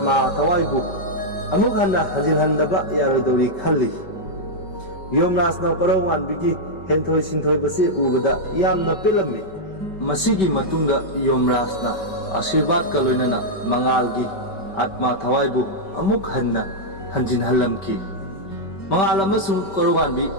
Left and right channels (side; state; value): right; late; 5.2 ms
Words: thawaibu amuk hanna hajilhandaba yarodori khalli. Yomraj na Koronganbigi henthoi sinthoi basi ubada yamna pelami. Masigi matungda Yomraj na Ashirwad ka loinana mangalgi atma thawaibu amuk hanna hanjinhallamki. Mangal amasung Koronganbi